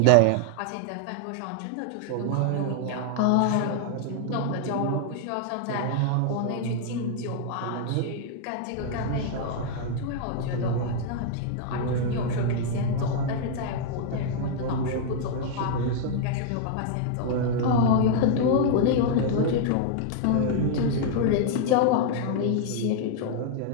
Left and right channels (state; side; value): different; both; correlation 0.00